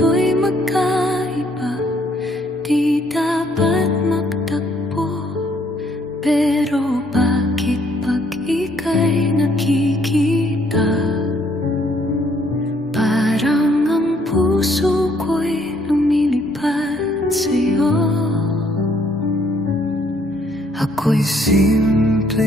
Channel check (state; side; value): normal; both; correlation 0.67